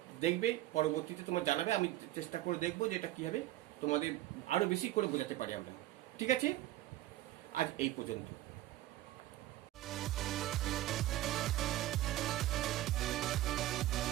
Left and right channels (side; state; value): left; quieter; 15.3 dB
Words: দেখবে, পরবর্তীতে তোমরা জানাবে, আমি চেষ্টা করে দেখবো যে এটা কীভাবে তোমাদের আরও বেশি করে বোঝাতে পারি আমরা। ঠিক আছে, আজ এই পর্যন্ত।